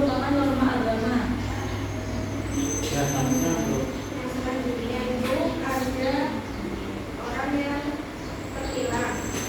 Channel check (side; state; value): both; identical; correlation 1.00